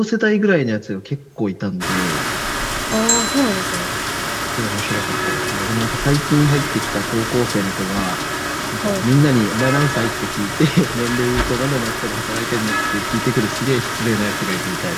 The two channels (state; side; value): identical; both; correlation 1.00